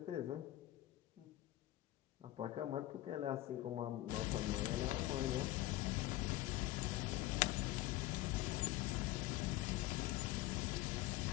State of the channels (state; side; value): quieter; right; 16.2 dB